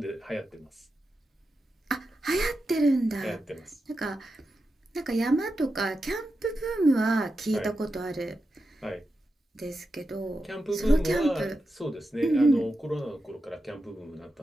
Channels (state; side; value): normal; both; correlation 0.89